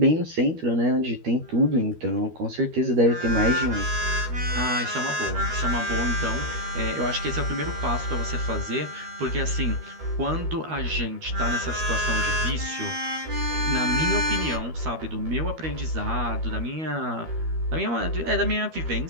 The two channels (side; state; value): left; late; 13 ms